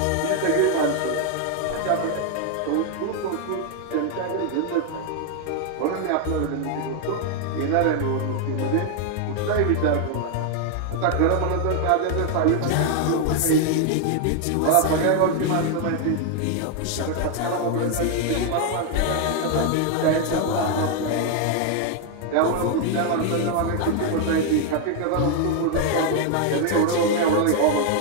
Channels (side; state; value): both; different; correlation 0.01